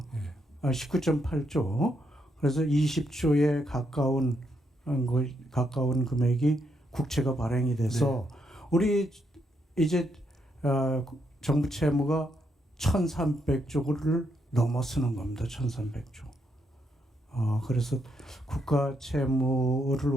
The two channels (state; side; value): normal; both; correlation 0.78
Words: 네. 19.8조. 그래서 20조에 가까운 금액이 국채가 발행이 돼서 우리 이제 정부 채무가 1,300조를 넘어서는 겁니다. 1,300조. 그래서 국가 채무를